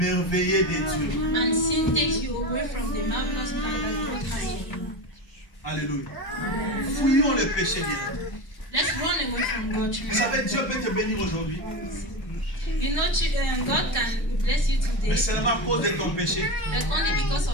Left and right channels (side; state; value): right; late; 1.2 ms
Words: de Dieu. And sin takes you away from the marvelous plan that God has for you. Alléluia. Fuyons les péchés bien. Let's run away from God. Vous savez, Dieu peut te bénir aujourd'hui, You know, God can bless you today, mais seulement à cause de ton péché. but only because